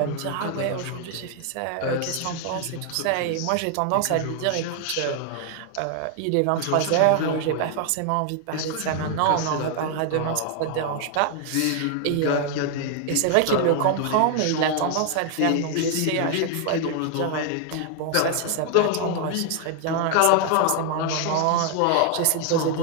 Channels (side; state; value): both; different; correlation 0.00